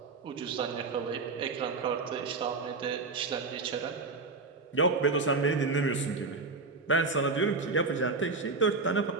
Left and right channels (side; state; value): left; quieter; 4.0 dB